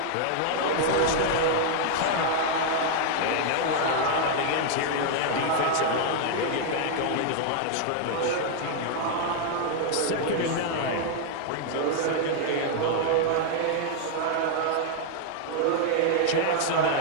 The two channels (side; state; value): both; different; correlation 0.00